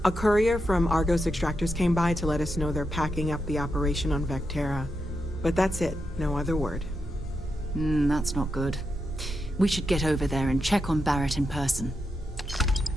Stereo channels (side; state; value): both; normal; correlation 0.85